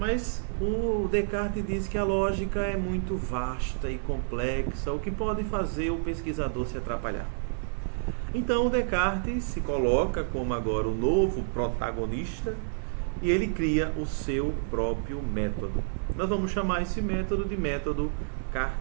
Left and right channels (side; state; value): left; silent; 59 dB below the other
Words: o Descartes diz que a lógica é muito vasta e complexa, o que pode fazer o pesquisador se atrapalhar. Então o Descartes se coloca como agora o novo protagonista e ele cria o seu próprio método. Nós vamos chamar esse método de método